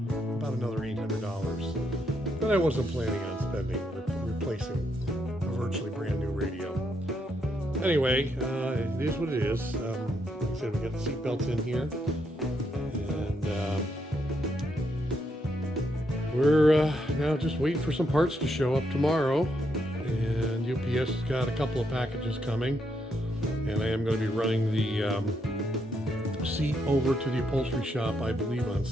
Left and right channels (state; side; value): normal; both; correlation 0.78